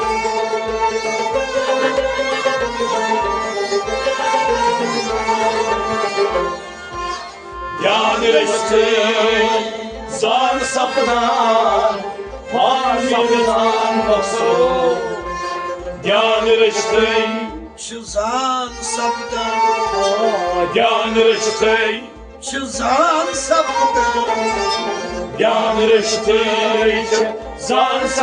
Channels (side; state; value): both; identical; correlation 1.00